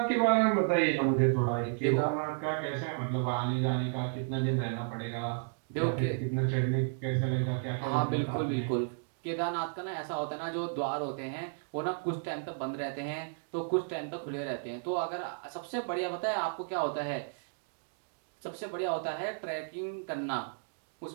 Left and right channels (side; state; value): left; silent; digital silence